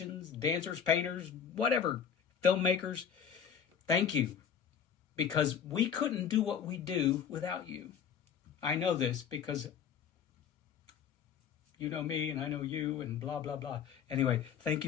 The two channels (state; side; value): quieter; right; 7.7 dB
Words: dancers, painters, whatever, filmmakers. Thank you, because we couldn't do what we do without you. I know this because you know me and I know you and blah, blah, blah. Anyway, thank